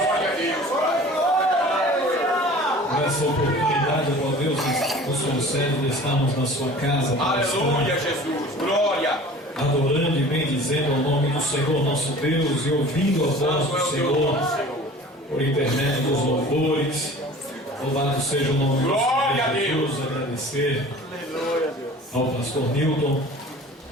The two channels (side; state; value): both; normal; correlation 0.43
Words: por essa oportunidade, ó Deus, que nos concede de estarmos na sua casa. Aleluia, Jesus, glória. Adorando e bendizendo ao nome do Senhor nosso Deus e ouvindo a voz do Senhor por intermédio dos louvores. Louvado seja o nome do Senhor Jesus. Agradecer ao pastor Newton